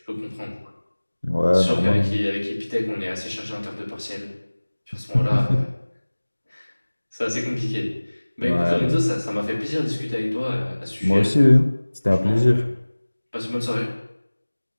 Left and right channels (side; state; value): both; inverted; correlation -1.00